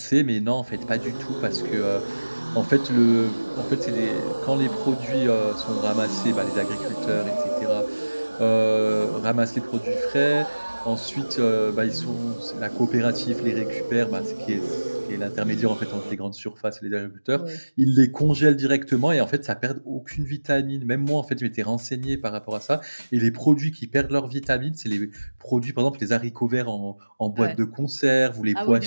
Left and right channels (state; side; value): inverted; both; correlation -1.00